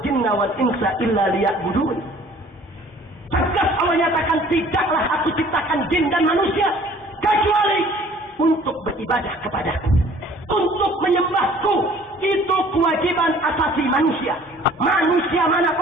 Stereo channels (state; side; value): normal; both; correlation 0.53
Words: jinna wal insa illa liya'budun. Tegas Allah nyatakan, tidaklah aku ciptakan jin dan manusia kecuali untuk beribadah kepadaku, untuk menyembahku. Itu kewajiban asasi manusia. Manusia